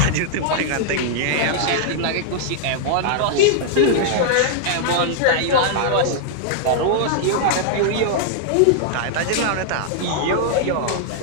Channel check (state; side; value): different; both; correlation -0.01